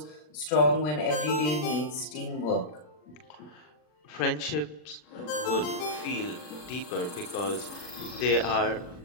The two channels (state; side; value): late; right; 40 ms